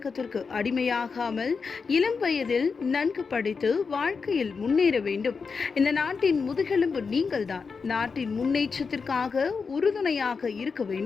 அடிமையாகாமல் இளம் வயதில் நன்கு படித்து வாழ்க்கையில் முன்னேற வேண்டும். இந்த நாட்டின் முதுகெலும்பு நீங்கள்தான். நாட்டின் முன்னேற்றத்திற்காக உறுதுணையாக இருக்க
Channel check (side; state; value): right; quieter; 5.2 dB